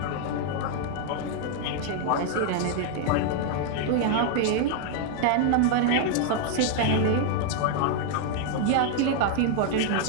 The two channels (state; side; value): different; both; correlation 0.00